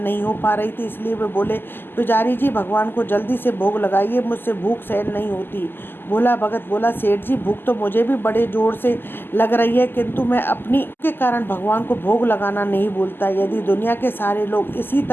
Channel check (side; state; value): right; late; 0.098 ms